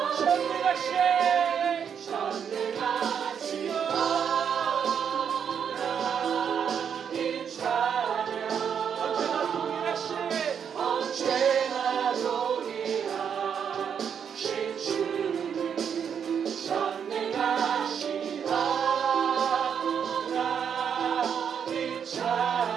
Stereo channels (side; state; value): left; quieter; 7.6 dB